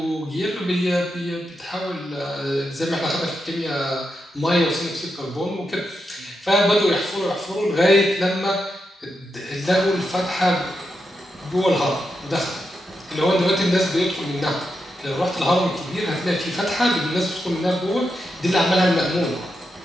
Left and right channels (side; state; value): both; normal; correlation 0.86